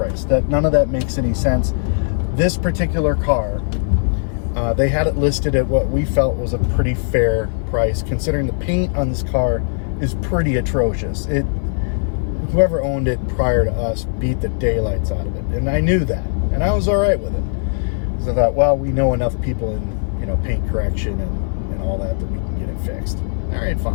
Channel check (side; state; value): right; silent; 56 dB below the other